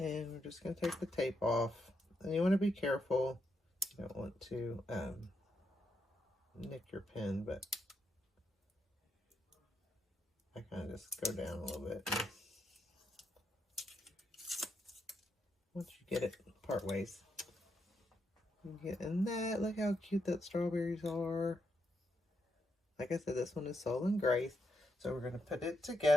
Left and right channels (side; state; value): both; normal; correlation 0.81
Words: we're just going to take the tape off. And you want to be careful. You don't want to nick your pin, but I kind of just go down a little bit. Once you get it part ways. You get in that. Look how cute that strawberries are. Like I said, this one is Soul and Grace. So we're going to put it